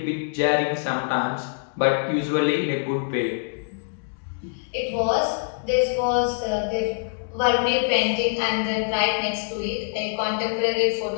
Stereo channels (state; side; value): silent; right; digital silence